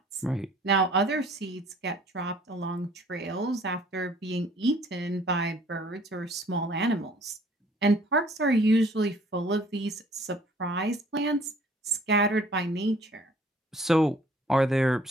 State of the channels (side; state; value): both; normal; correlation 0.56